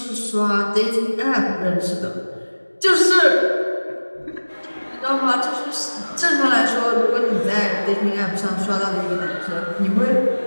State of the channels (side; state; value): both; inverted; correlation -1.00